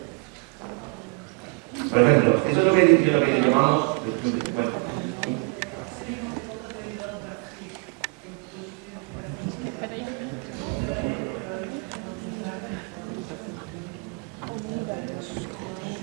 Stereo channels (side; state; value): left; quieter; 30.9 dB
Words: Por ejemplo, eso es lo que llamamos... Bueno,